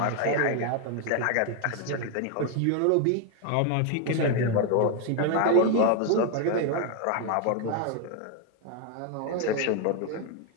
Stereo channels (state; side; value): different; both; correlation 0.01